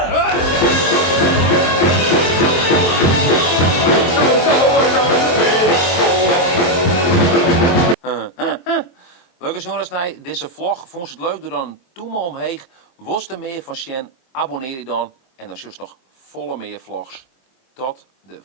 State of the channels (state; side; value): late; right; 23 ms